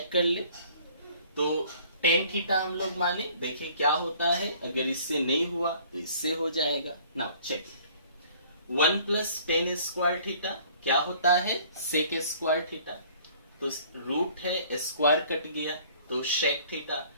कर ले, तो टेन थीटा हम लोग माने, देखिए क्या होता है, अगर इससे नहीं हुआ तो इससे हो जाएगा। Now check, 1 plus tan square theta क्या होता है, सेक स्क्वायर थीटा, तो रूट है स्क्वायर कट गया तो शेक थीटा,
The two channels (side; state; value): both; inverted; correlation -0.54